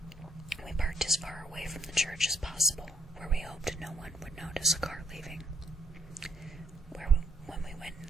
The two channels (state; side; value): normal; both; correlation 0.71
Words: We parked as far away from the church as possible, where we hoped no one would notice a car leaving. When we went